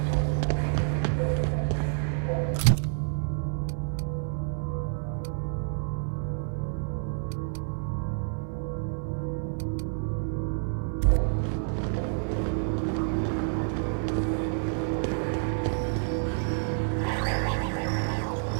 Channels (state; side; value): silent; left; digital silence